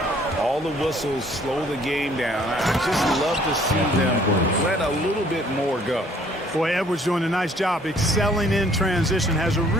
All the whistles slow the game down. I just love to see them let a little bit more go. Boy, Edwards doing a nice job excelling in transition, has a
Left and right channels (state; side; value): normal; both; correlation 0.59